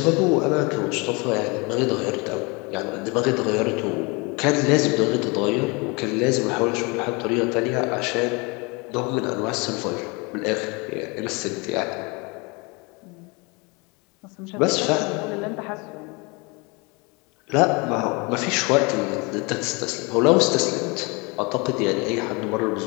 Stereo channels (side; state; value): right; quieter; 28.4 dB